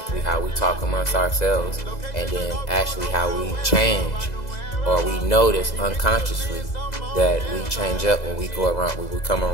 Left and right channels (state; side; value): late; right; 2.0 ms